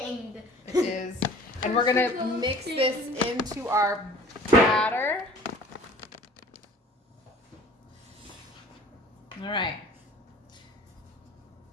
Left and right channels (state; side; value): normal; both; correlation 0.48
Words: It is. And we're gonna mix this into our batter. All right.